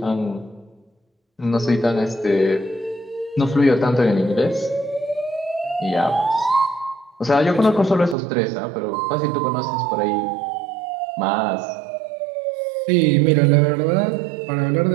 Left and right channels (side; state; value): left; drops out; at 8.2 s